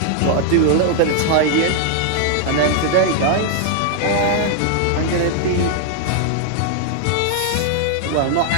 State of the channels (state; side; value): different; both; correlation 0.00